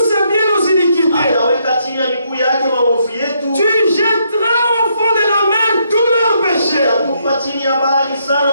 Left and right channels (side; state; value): both; inverted; correlation -0.74